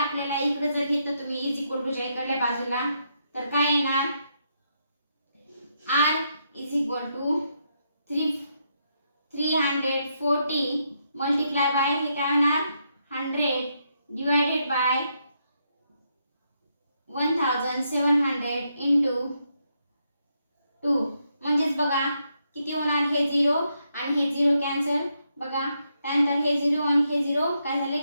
इकडे जर घेतलं तुम्ही इज इक्वल टू च्या इकडल्या बाजूला तर काय येणार, R is equal to 340 multiply by हे काय होणार 100 डिवायडेड बाय 1700 इंटू 2 म्हणजेच बघा किती होणार, हे 0 आणि हे 0 कॅन्सल बघा. त्यानंतर हे 0 आणि हे 0 काय झाले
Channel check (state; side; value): inverted; both; correlation -0.79